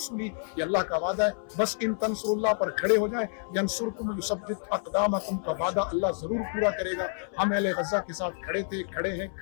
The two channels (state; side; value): silent; right; 59 dB below the other